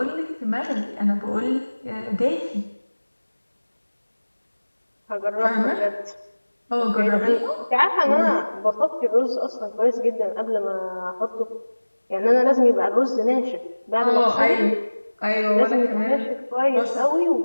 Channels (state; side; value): inverted; both; correlation -1.00